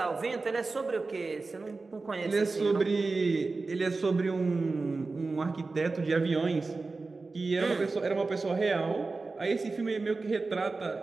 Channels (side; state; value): left; quieter; 3.8 dB